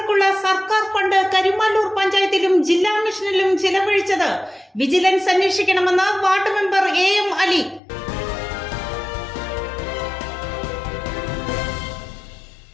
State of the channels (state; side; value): drops out; right; at 7.8 s